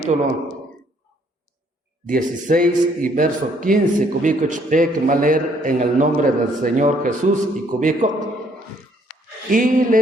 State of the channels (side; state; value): both; normal; correlation 0.65